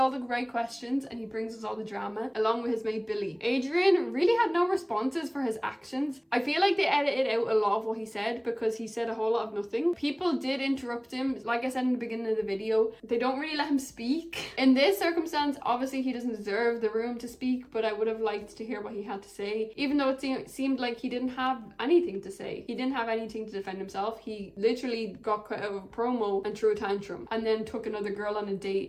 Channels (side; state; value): both; identical; correlation 1.00